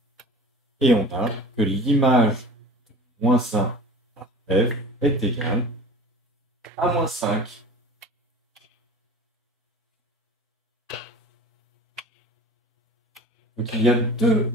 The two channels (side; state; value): both; normal; correlation 0.39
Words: Et on a que l'image de moins 1 par f est égale à moins 5. Donc il y a deux